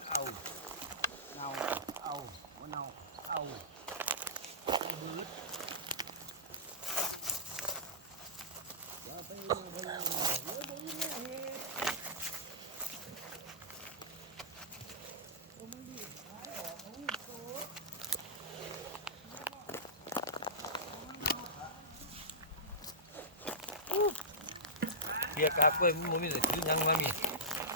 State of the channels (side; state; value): both; normal; correlation -0.16